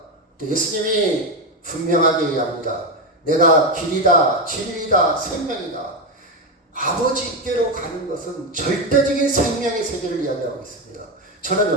예수님이 분명하게 얘기합니다. 내가 길이다, 진리다, 생명이다. 아버지께로 가는 것은 절대적인 생명의 세계를 이야기하고 있습니다.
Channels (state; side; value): normal; both; correlation 0.12